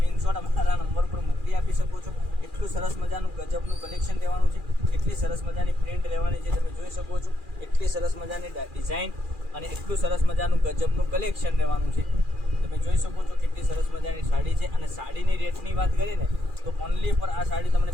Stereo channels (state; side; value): late; left; 2.4 ms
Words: અમારા નંબર પર મોકલી આપી શકો છો. એટલું સરસ મજાનું ગજબનું કલેક્શન લેવાનું છે. એટલી સરસ મજાની પ્રિન્ટ લેવાની છે, તમે જોઈ શકો છો. એટલી સરસ મજાની ડિઝાઇન અને એટલું સરસ મજાનું ગજબનું કલેક્શન લેવાનું છે. તમે જોઈ શકો છો કેટલી સરસ મજાની સાડી છે. અને સાડીની રેટની વાત કરીએ ને તો ઓનલી પર આ સાડી તમને